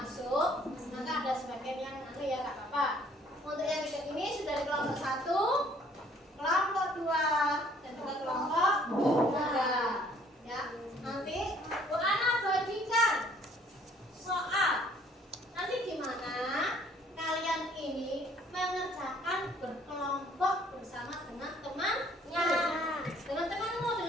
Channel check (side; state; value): both; normal; correlation 0.60